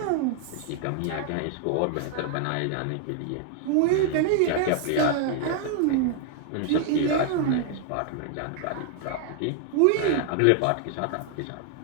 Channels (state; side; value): different; both; correlation 0.00